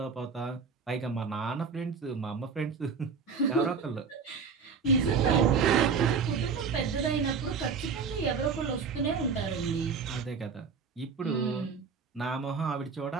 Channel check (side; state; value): left; quieter; 5.6 dB